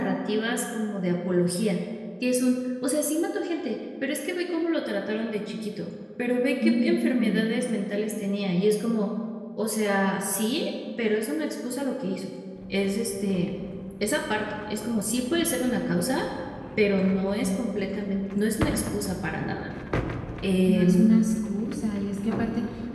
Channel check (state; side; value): identical; both; correlation 1.00